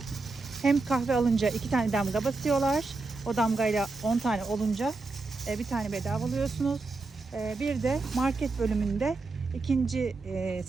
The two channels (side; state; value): left; quieter; 3.7 dB